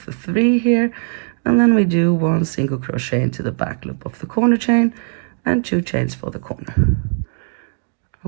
the 3 here. And then we do 1 single crochet into the back loop of the corner chain and 2 chains for the corner.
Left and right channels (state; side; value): silent; left; 57 dB below the other